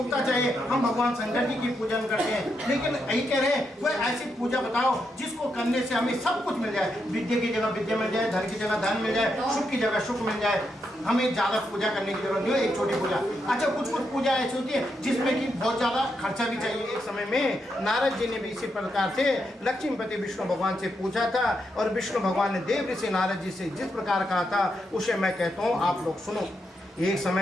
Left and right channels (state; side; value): normal; both; correlation 0.82